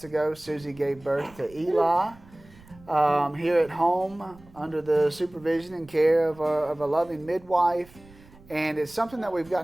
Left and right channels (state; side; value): noise; right; rumble, 24 dB below the sound